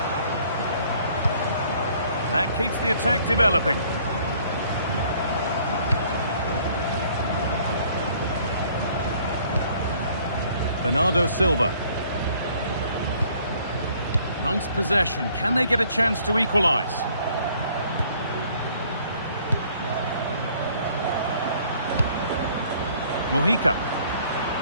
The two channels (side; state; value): both; inverted; correlation -0.59